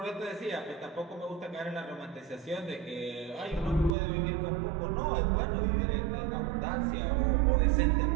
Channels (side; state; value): left; drops out; at 4.0 s